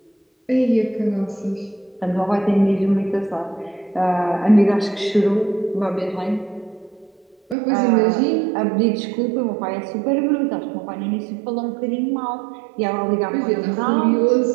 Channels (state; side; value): drops out; left; at 7.6 s